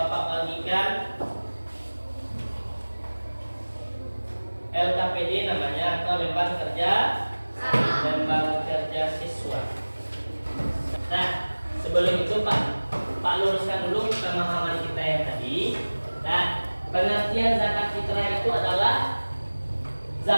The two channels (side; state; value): both; inverted; correlation -1.00